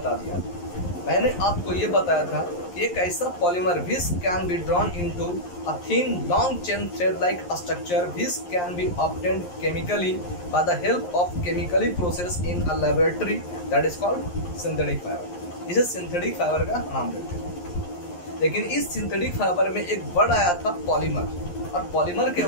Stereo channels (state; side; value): late; right; 11 ms